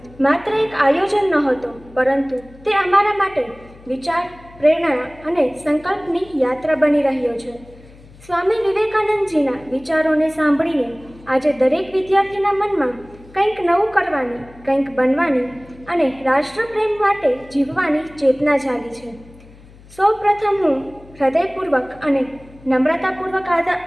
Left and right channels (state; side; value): noise; left; hum, 23 dB below the sound